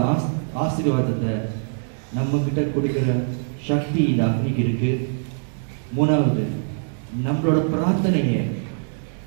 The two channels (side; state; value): left; silent; digital silence